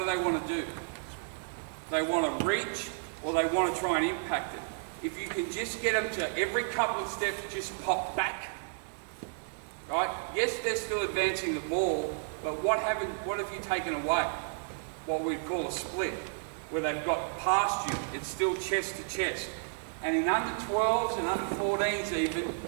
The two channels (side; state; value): left; silent; 56 dB below the other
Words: they want to do? They want to reach, or they want to try and impact it. If you can just get them to every couple of steps, just pop back. Right? Yes, they're still advancing the ball, but what have you taken away? What we'd call a split, where they've got past you. It's still chest to chest. And in under 12s and under 14s even,